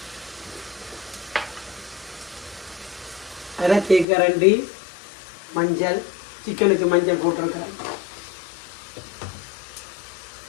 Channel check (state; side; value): drops out; right; at 4.0 s